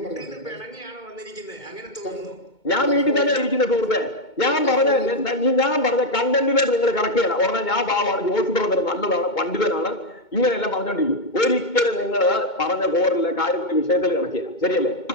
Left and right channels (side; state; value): right; late; 2.2 ms